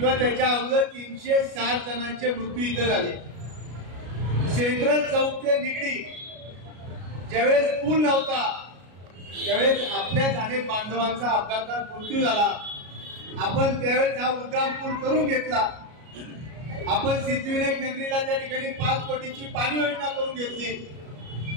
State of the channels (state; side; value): late; left; 33 ms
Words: त्याच्या अगोदर 360 जणांचे मृत्यू इथं झाले। सेंट्रल चौक ते निगडी ज्यावेळेस पूल नव्हता त्यावेळेस आपल्याच अनेक बांधवांचा अपघातात मृत्यू झाला। आपण त्यावेळेस हा उड्डाण पूल करून घेतला। आपण सिद्धिविनायक नगरीला त्या ठिकाणी 5 कोटीची पाणी योजना करून घेतली।